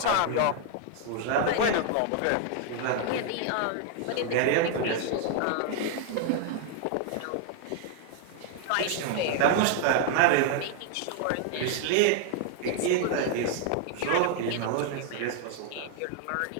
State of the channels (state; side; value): different; both; correlation 0.00